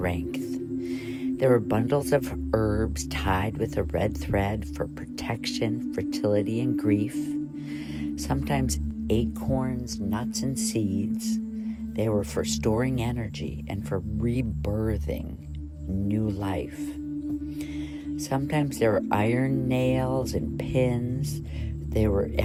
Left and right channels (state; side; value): identical; both; correlation 1.00